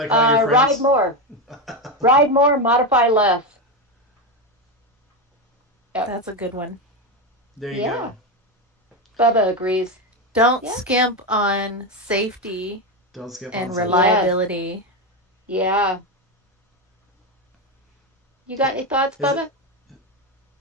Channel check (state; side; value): normal; both; correlation 0.12